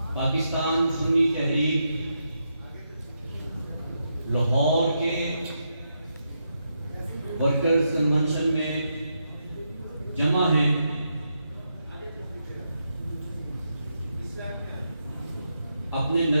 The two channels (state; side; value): inverted; both; correlation -0.83